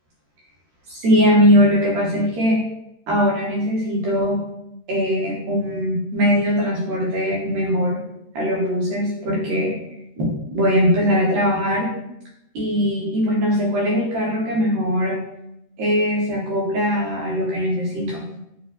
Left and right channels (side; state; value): left; late; 13 ms